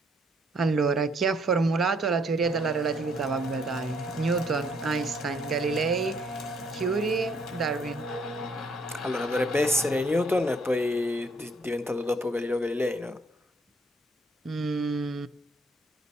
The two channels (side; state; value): both; normal; correlation 0.66